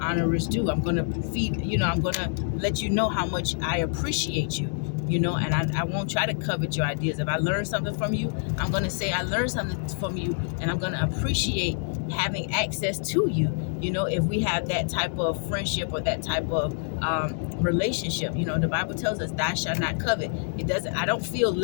honor is due. I'm going to feed, you know, I'm going to let you know how much I appreciate you, you know, and I won't try to covet your ideas. If I learn something from you, I'm going to say I learned something from you, and I'm going to appreciate having access to you, you know, if we have that type of friendship or that type of relationship. You know, the Bible tells us thou shalt not covet. I don't feel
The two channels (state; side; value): silent; right; digital silence